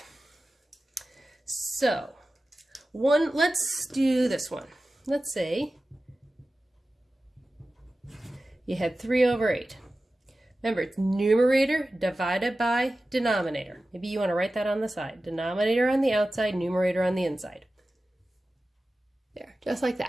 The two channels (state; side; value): normal; both; correlation 0.95